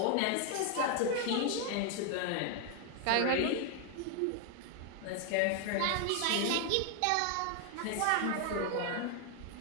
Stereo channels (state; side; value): different; both; correlation 0.00